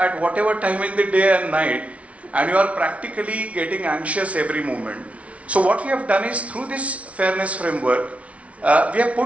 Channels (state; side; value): late; left; 0.064 ms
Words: whatever time in the day and night, and you are practically getting anxious every moment. So what we have done is, through this fairness framework, we have